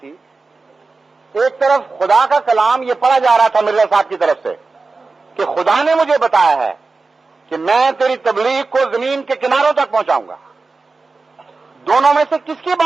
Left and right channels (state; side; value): quieter; left; 3.9 dB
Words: ایک طرف خدا کا کلام یہ پڑھا جا رہا تھا مرزا صاحب کی طرف سے کہ خدا نے مجھے بتایا ہے کہ میں تیری تبلیغ کو زمین کے کناروں تک پہنچاؤں گا. دونوں میں سے کس کی